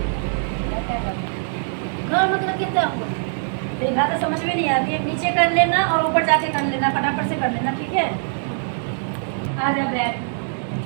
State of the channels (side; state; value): left; silent; 64 dB below the other